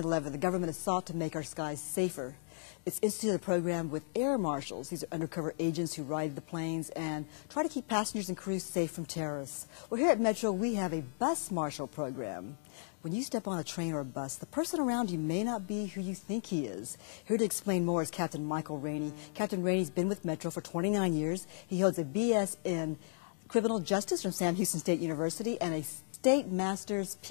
the government has sought to make our skies safer. It's instituted a program with air marshals. These are undercover agents who ride the planes and try to keep passengers and crews safe from terrorists. Well, here at Metro, we have a bus marshal program. When you step on a train or a bus, the person around you may not be who you think he is. Here to explain more is Captain Michael Rainey. Captain Rainey's been with Metro for 29 years. He holds a BS in Criminal Justice from Sam Houston State University and a State Master's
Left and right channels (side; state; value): right; silent; digital silence